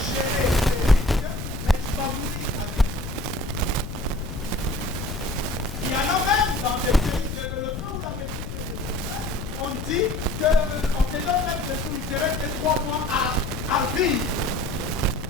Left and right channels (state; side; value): noise; left; rumble, 7 dB below the sound